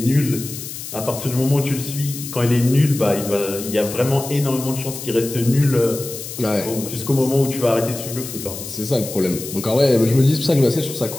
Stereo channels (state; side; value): noise; left; hiss, 10 dB below the sound